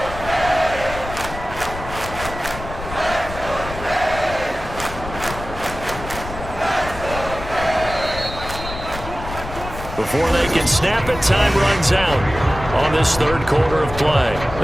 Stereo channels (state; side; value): noise; left; rumble, 10 dB below the sound